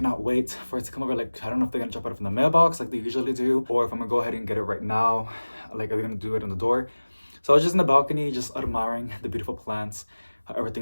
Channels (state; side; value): inverted; both; correlation -1.00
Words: wait for it to come over. Like, I don't know if they're gonna drop it from the mailbox like they usually do, or if I'm gonna go ahead and get it right now. Like, are they gonna do it on the door? So I was just in the balcony, just admiring the beautiful plants, how